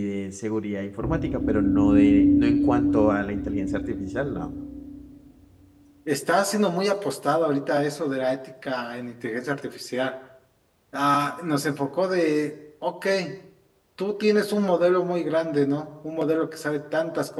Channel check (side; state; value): both; identical; correlation 1.00